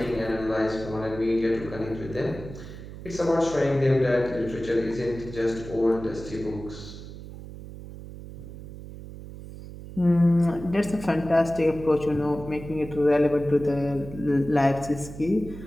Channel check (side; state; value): right; noise; hum, 13 dB below the sound